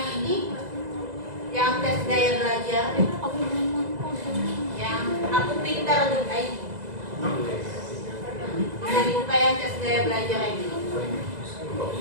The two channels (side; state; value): left; late; 2.0 ms